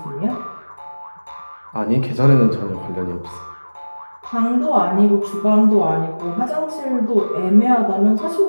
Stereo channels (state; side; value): inverted; both; correlation -1.00